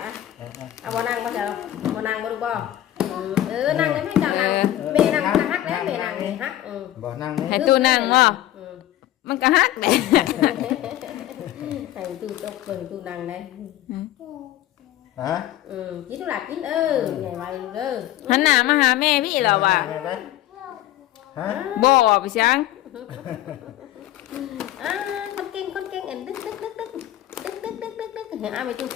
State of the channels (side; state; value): right; quieter; 13.7 dB